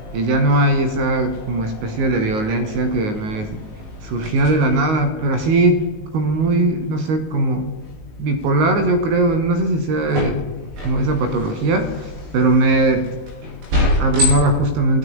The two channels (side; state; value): left; late; 19 ms